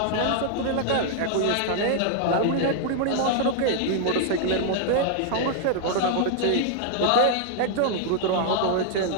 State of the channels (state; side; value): different; both; correlation 0.00